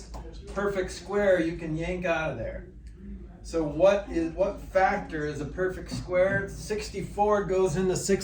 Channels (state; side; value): identical; both; correlation 1.00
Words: perfect square you can yank out of there. So what factor is a perfect square? 64 goes into